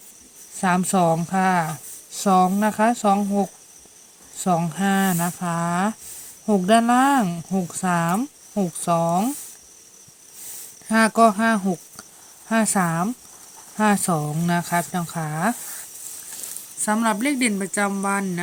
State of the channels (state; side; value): identical; both; correlation 1.00